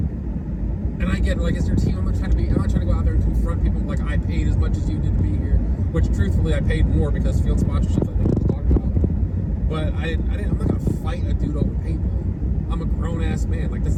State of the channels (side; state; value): both; identical; correlation 1.00